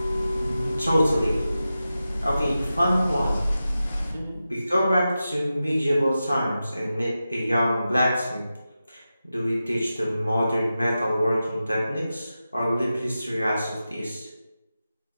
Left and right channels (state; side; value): inverted; both; correlation -0.92